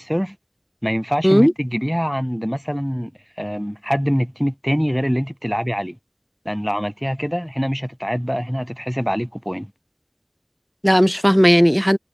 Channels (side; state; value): both; identical; correlation 1.00